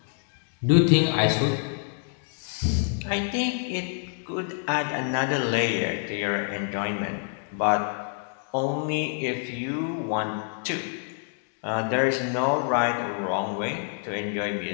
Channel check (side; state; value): right; silent; 60 dB below the other